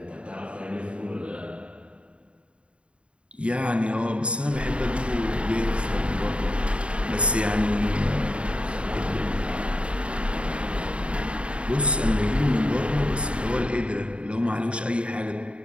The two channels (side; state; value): left; late; 0.058 ms